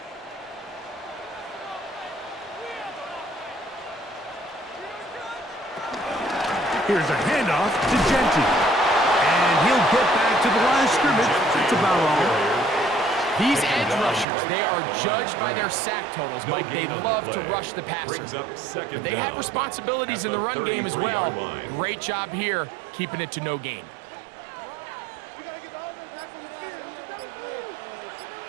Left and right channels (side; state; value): left; drops out; at 14.2 s